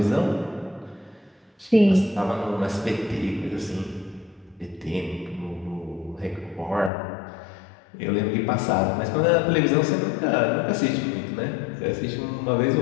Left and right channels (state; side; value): drops out; right; at 6.9 s